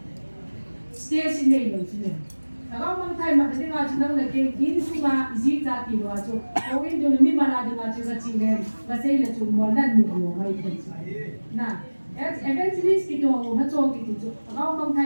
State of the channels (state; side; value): inverted; both; correlation -1.00